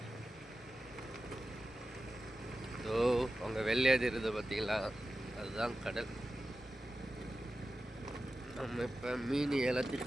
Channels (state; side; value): normal; both; correlation 0.93